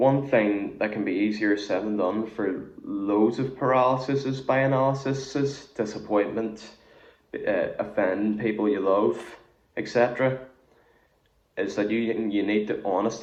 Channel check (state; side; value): identical; both; correlation 1.00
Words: thing that can be easier said than done for loads of paralysis by analysis is disappointment, offending people you love, etc. Is that you need to